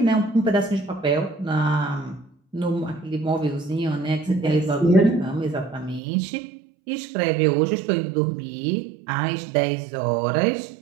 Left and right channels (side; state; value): left; drops out; at 6.0 s